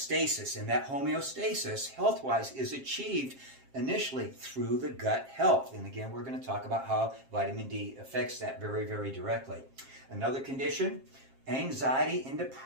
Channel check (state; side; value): late; left; 7.5 ms